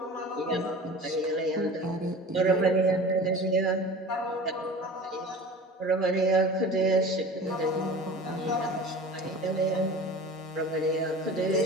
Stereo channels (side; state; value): both; normal; correlation 0.37